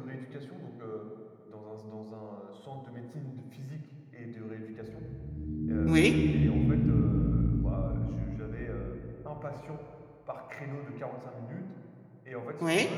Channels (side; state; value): both; identical; correlation 1.00